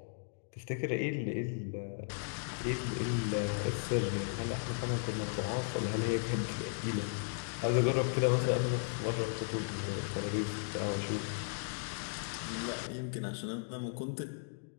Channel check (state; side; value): silent; right; digital silence